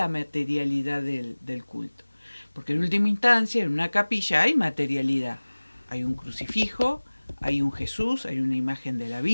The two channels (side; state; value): both; inverted; correlation -1.00